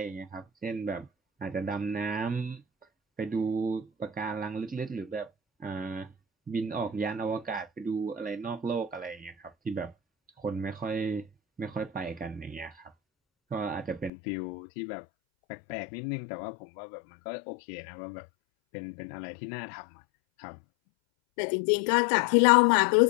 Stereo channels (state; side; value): drops out; right; at 14.1 s